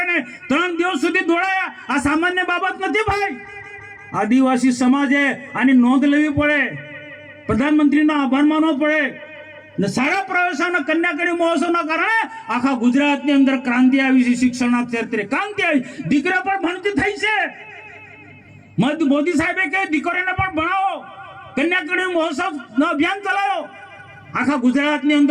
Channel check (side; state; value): both; identical; correlation 1.00